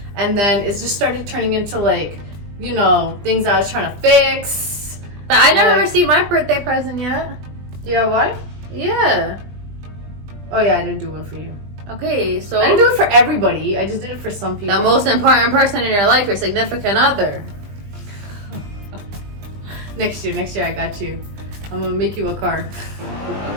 and then it's just started turning into like, you know, things I was trying to fix. But I never received my birthday present yet. DIY? Yeah. Oh yeah, I didn't do one for you. Okay, so I didn't do it for everybody. I just did it for some people. The most important person in your life, your significant other. Next year, I got you. I'm gonna make you a car.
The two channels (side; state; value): left; late; 20 ms